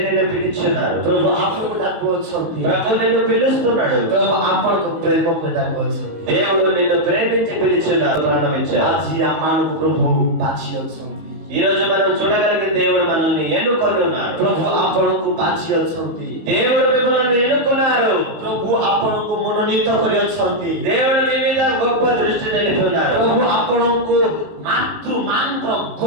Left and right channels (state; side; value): late; left; 19 ms